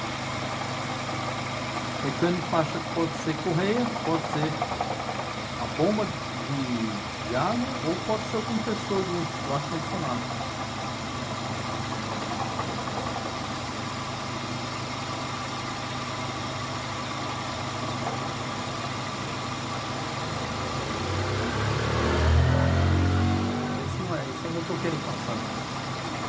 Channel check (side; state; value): both; identical; correlation 1.00